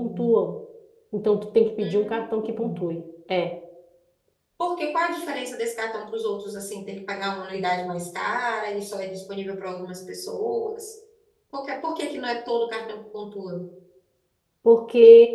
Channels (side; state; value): both; identical; correlation 1.00